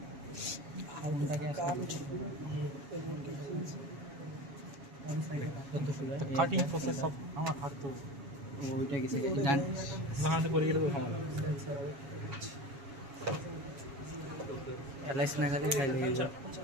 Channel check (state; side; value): late; left; 7.2 ms